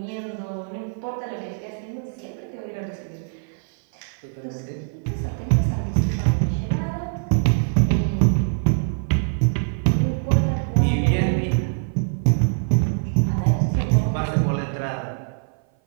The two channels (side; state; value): left; silent; 57 dB below the other